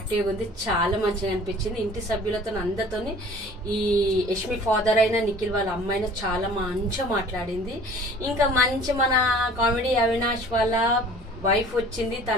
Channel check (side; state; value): both; normal; correlation 0.48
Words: ఉంది, చాలా మంచిగా అనిపించింది. ఇంటి సభ్యులతో అందరితో ఈ యష్మి ఫాదర్ అయినా నిఖిల్ వాళ్ళ అమ్మ అయినా చాలా మంచిగా మాట్లాడింది. ఇంకా మంచి మన కామెడీ అవినాష్ వాళ్ళ వైఫ్ వచ్చింది,